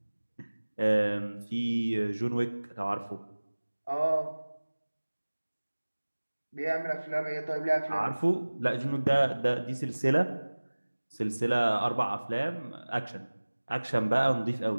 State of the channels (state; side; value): inverted; both; correlation -1.00